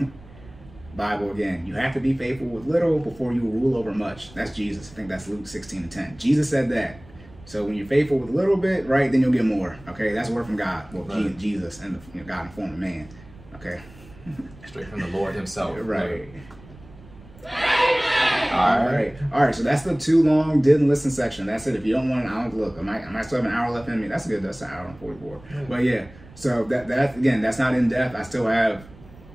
Bible again. You have to be faithful with little before you will rule over much. That's Jesus. I think that's Luke 16:10. Jesus said that. So when you're faithful with a little bit, right, then you'll get more. Okay, that's a word from God. Well, right. Jesus and God in form of man. Okay. Straight from the Lord himself. Right. All right. All right. So that's the too long didn't listen section. That's it. If you don't want an hour, look, I might still have an hour left in me. That's good. That's an hour and 44. Yeah. But yeah. So that again, that's not in depth. I still have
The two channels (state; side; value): noise; right; rumble, 22 dB below the sound